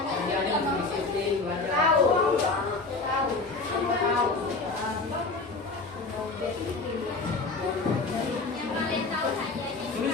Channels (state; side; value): quieter; right; 3.7 dB